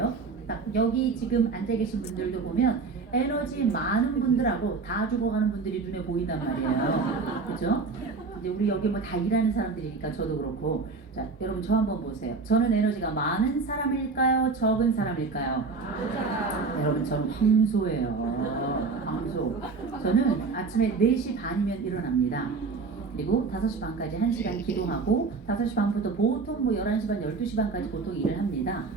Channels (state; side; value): quieter; left; 4.4 dB